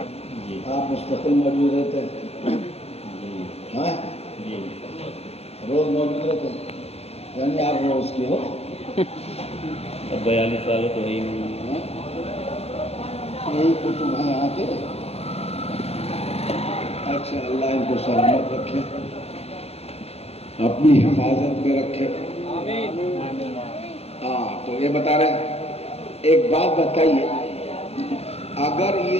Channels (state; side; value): late; right; 0.30 ms